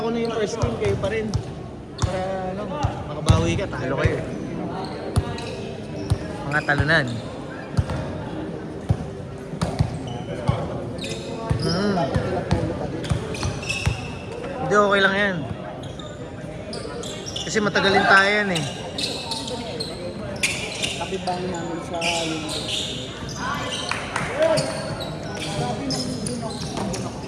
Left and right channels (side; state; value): both; identical; correlation 1.00